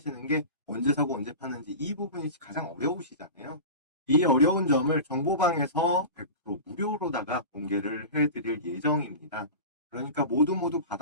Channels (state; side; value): inverted; both; correlation -0.31